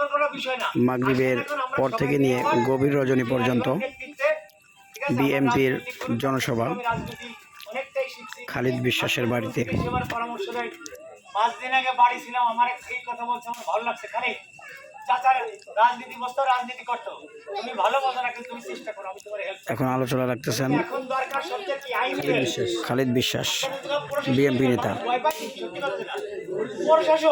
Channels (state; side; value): identical; both; correlation 1.00